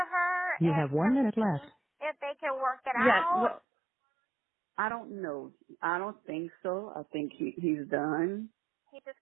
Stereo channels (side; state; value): left; drops out; at 3.6 s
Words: You have 1 minute left. If they can work it out? Well, I don't know. I don't think so. I think he's done. He's just